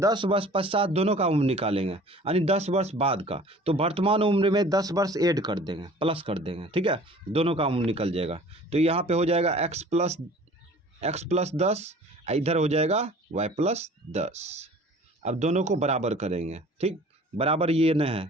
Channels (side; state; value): both; normal; correlation 0.47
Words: वर्ष पश्चात दोनों का उम्र निकालेंगे, यानी 10 वर्ष बाद का, तो वर्तमान उम्र में 10 वर्ष ऐड कर देंगे, प्लस कर देंगे, ठीक है, दोनों का उम्र निकल जाएगा। तो यहाँ पे हो जाएगा x प्लस 10, इधर हो जाएगा y प्लस 10। अब दोनों को बराबर करेंगे, ठीक, बराबर ये न